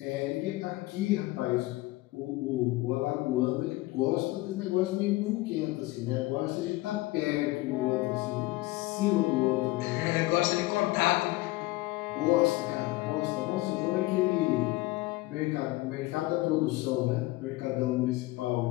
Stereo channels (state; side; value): quieter; right; 19.8 dB